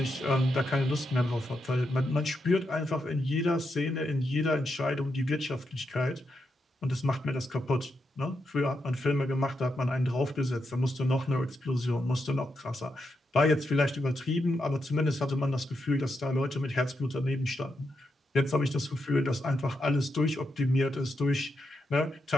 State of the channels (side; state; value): both; normal; correlation 0.84